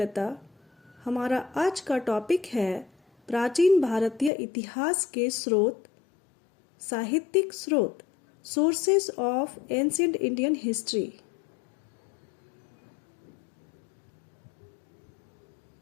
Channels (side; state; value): right; drops out; at 4.3 s